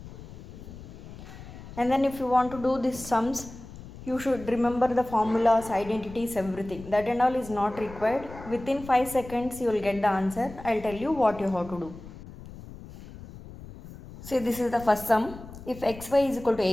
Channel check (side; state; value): left; noise; rumble, 15 dB below the sound